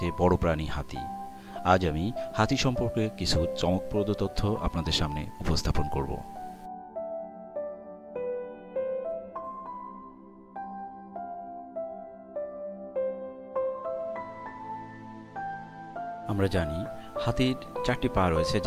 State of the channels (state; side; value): identical; both; correlation 1.00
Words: বড় প্রাণী হাতি। আজ আমি হাতি সম্পর্কে কিছু চমকপ্রদ তথ্য আপনাদের সামনে উপস্থাপন করব। আমরা জানি হাতির 4টি পা রয়েছে